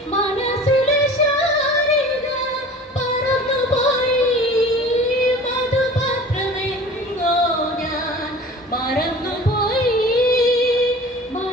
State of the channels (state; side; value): normal; both; correlation 0.42